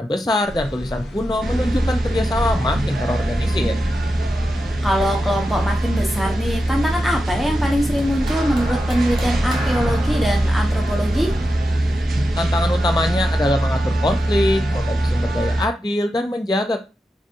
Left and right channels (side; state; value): both; normal; correlation 0.89